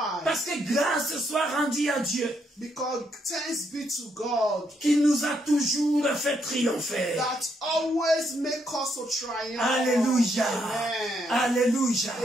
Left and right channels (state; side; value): normal; both; correlation 0.75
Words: Parce que grâce soit rendue à Dieu Because thanks be to God qui nous a toujours fait triompher. that always make us to triumph. Alléluia. Amen. Alléluia.